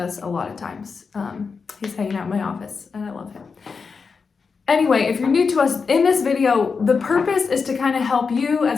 a lot of times. He's hanging out in my office and I love him. Anyway, if you're new to us, in this video, the purpose is to kind of help you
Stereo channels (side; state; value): right; quieter; 5.2 dB